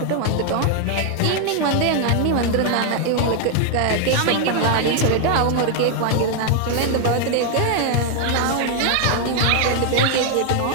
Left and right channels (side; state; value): both; different; correlation 0.00